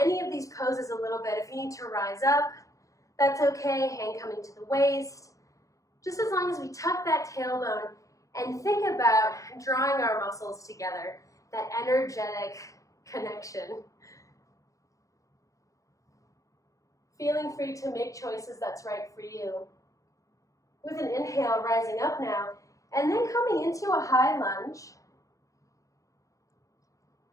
of these poses a little bit. If you need to rise up, that's okay. Hand coming to the waist. Just as long as we tuck that tailbone and think about drawing our muscles together, that energetic connection. Feeling free to make choices that's right for you. With an inhale, rising up now, and then coming into a high lunge.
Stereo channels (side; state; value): right; late; 0.16 ms